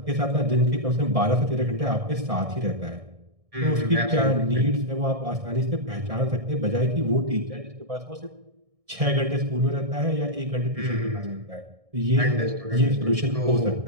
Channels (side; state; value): left; late; 1.6 ms